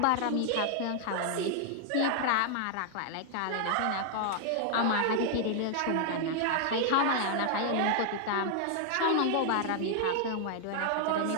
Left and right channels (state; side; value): different; both; correlation 0.00